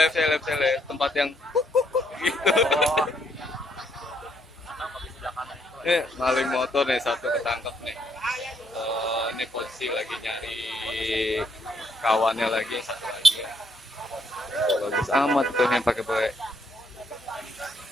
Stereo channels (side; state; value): both; normal; correlation 0.72